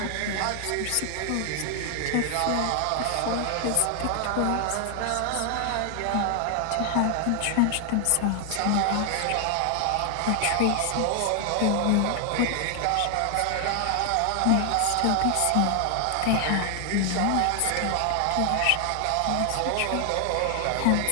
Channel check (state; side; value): different; both; correlation 0.00